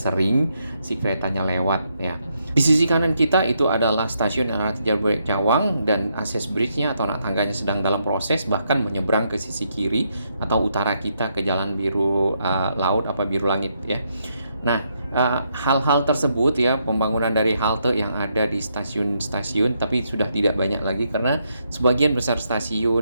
si keretanya lewat ya. Di sisi kanan kita itu adalah stasiun LRT Jabodebek Cawang, dan akses bridge-nya atau anak tangganya sedang dalam proses, bahkan menyeberang ke sisi kiri atau utara kita ke jalan biru laut apa biru langit ya. Nah, hal-hal tersebut ya, pembangunan dari halte yang ada di stasiun-stasiun, tapi sudah tidak banyak lagi karena sebagian besar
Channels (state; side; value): inverted; both; correlation -0.78